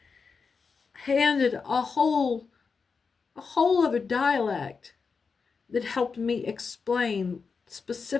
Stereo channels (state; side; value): quieter; right; 5.2 dB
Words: handed a whole other dialect that helped me explain